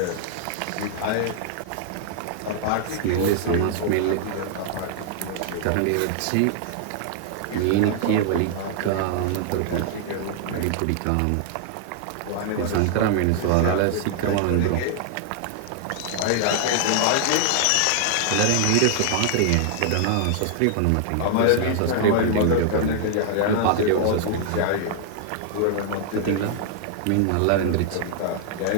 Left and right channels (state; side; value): different; both; correlation -0.01